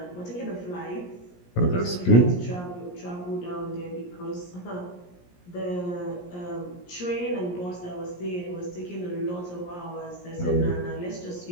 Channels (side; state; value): right; late; 17 ms